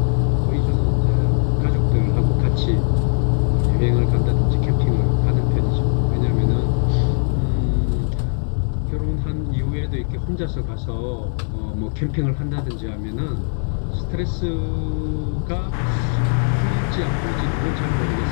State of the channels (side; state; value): right; silent; 59 dB below the other